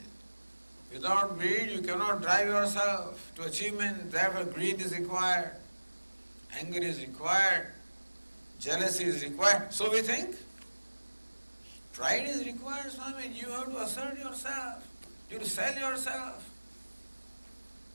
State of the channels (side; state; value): both; inverted; correlation -1.00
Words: Without greed, you cannot drive yourself to achievement. Therefore, greed is required. Anger is required. Jealousy is required. So we think. Pride is required, Swami. You have to assert yourself. You have to sell yourself.